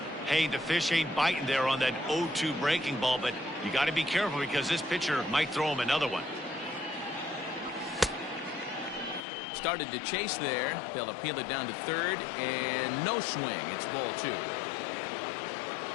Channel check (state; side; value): drops out; right; at 9.2 s